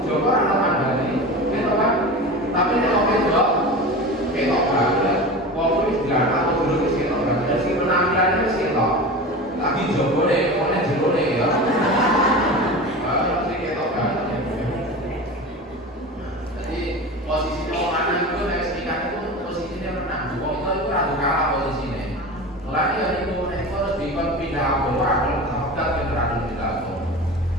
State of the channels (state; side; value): normal; both; correlation 0.30